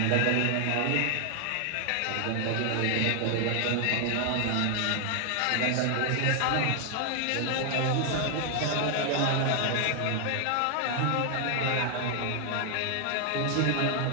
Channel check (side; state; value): both; different; correlation 0.00